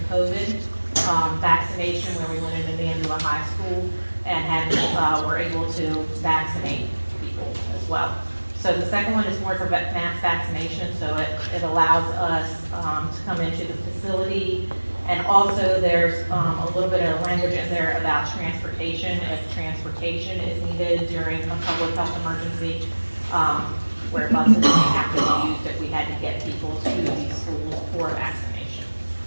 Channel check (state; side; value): inverted; both; correlation -1.00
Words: COVID vaccination, where we went into Mandela High School and were able to vaccinate people as well. So the second one is more for mass vaccination, so it allows us to come into the facility. And also there's a little bit of language in there about transportation, if transportation is needed during a public health emergency, where buses may have to be used if we had to get people to these schools for vaccination.